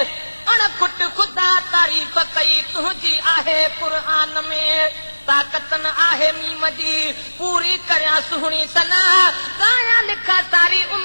अणखुट खुदा तारीफ़ कई तुझी आहे क़ुरान में ताकत न आहे मीम जी पूरी करियां सुहिणी सना गाया लिखा सारी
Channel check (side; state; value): both; inverted; correlation -1.00